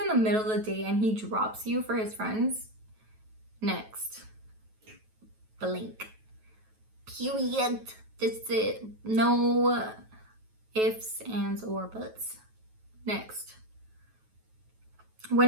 in the middle of the day and he drops you for his friends, next. Blink. Period. That's it. No ifs, ands, or buts. Next.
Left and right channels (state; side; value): late; left; 9.2 ms